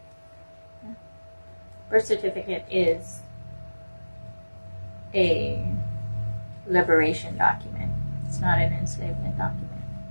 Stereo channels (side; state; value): both; inverted; correlation -1.00